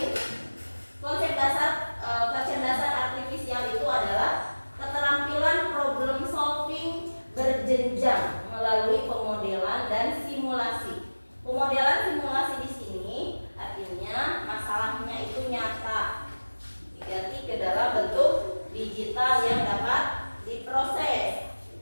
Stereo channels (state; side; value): inverted; both; correlation -1.00